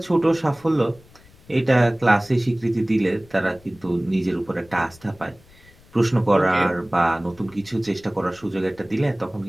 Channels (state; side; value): noise; left; rumble, 26 dB below the sound